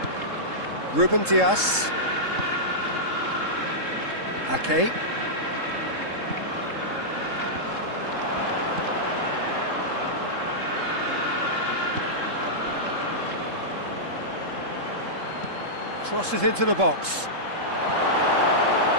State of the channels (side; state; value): left; late; 3.7 ms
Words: Ruben Dias. Ake. Crosses into the box.